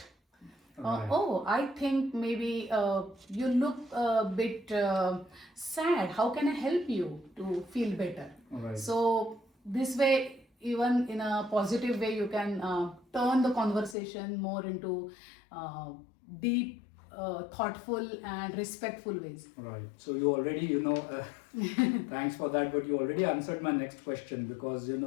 Oh, I think maybe you look a bit sad. How can I help you to feel better? Right. So this way, even in a positive way, you can turn the conversation more into deep, thoughtful and respectful ways. Right. So you already, thanks for that, but you already answered my next question, because,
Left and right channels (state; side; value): drops out; right; at 14.0 s